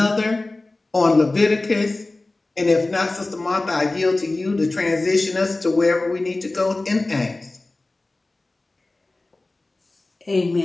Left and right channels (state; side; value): quieter; right; 3.0 dB